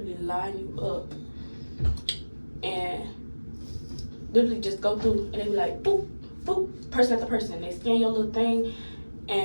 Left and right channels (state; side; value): inverted; both; correlation -1.00